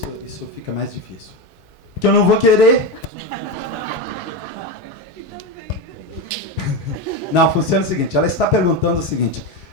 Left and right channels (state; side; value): normal; both; correlation 0.16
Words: fica mais difícil. Porque eu não vou querer. Não, funciona o seguinte, ela está perguntando o seguinte,